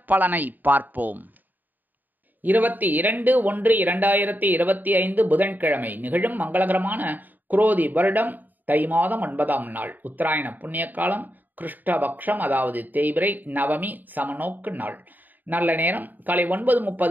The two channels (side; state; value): left; late; 0.087 ms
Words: பார்ப்போம். 22/1/2025 புதன்கிழமை நிகழும் மங்களகரமான குரோதி வருடம் தை மாதம் 9ஆம் நாள், உத்தராயண புண்ணிய காலம், கிருஷ்ணபக்ஷம், அதாவது தேய்பிறை நவமி சமநோக்கு நாள். நல்ல நேரம் காலை